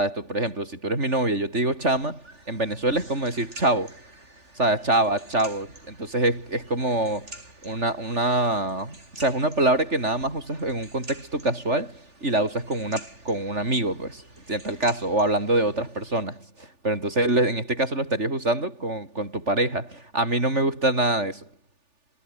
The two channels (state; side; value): late; left; 3.4 ms